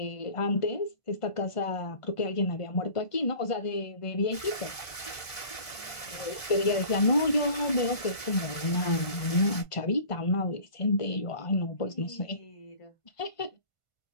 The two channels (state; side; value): late; right; 1.7 ms